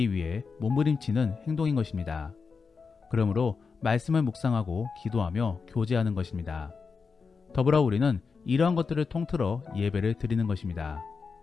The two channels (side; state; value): right; quieter; 5.1 dB